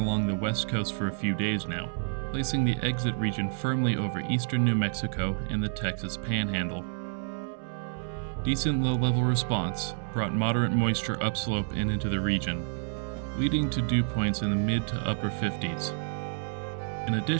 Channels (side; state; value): left; silent; 58 dB below the other